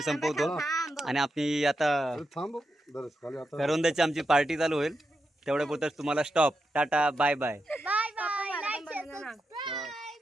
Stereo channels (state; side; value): normal; both; correlation 0.86